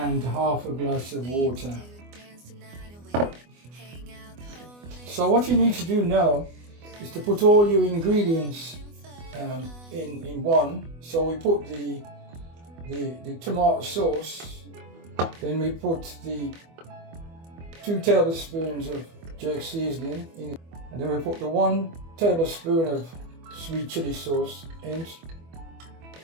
half a glass of water. So what you need to do now is to put all your ingredients in one. So we put the tomato sauce, then we put the 2 tablespoons of jerk seasoning in, and then we put the 1 tablespoon of sweet chili sauce in,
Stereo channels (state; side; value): late; left; 24 ms